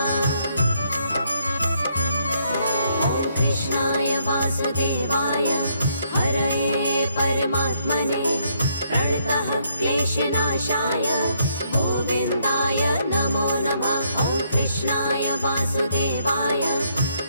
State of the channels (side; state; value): both; inverted; correlation -0.72